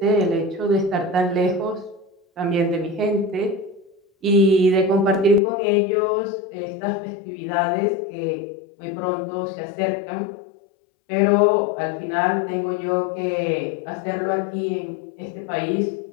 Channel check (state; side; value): drops out; right; at 5.4 s